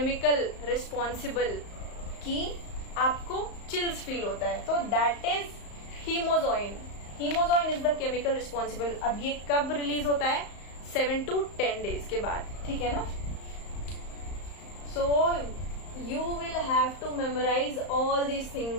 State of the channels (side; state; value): right; late; 34 ms